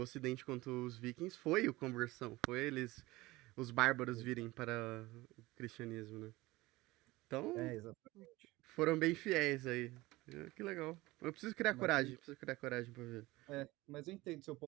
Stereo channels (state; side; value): quieter; left; 20.1 dB